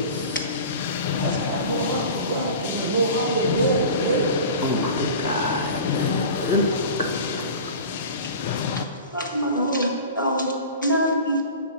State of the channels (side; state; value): both; inverted; correlation -0.37